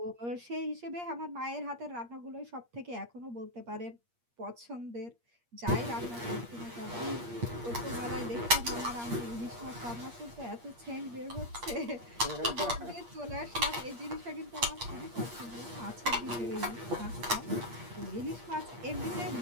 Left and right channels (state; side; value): late; left; 8.5 ms